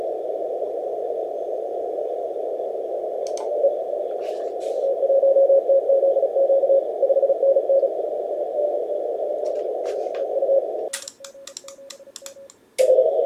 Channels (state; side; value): identical; both; correlation 1.00